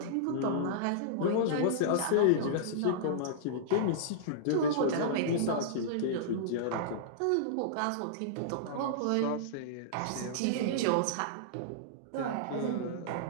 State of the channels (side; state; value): both; different; correlation -0.03